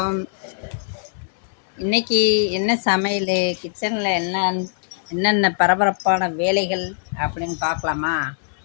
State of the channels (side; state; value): right; silent; 64 dB below the other